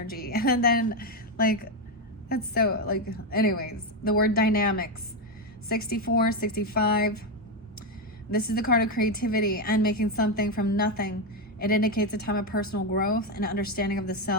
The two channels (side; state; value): both; normal; correlation 0.07